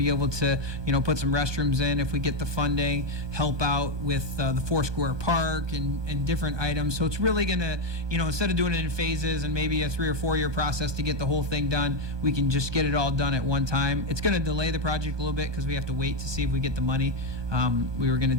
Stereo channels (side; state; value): left; late; 1.2 ms